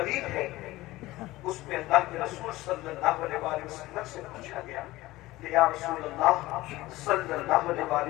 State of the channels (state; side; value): quieter; right; 18.2 dB